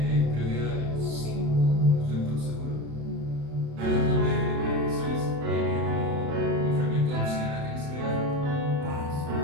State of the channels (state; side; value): late; left; 35 ms